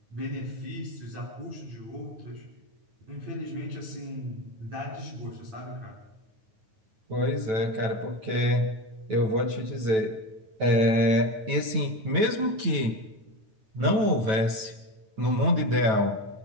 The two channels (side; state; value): left; late; 9.1 ms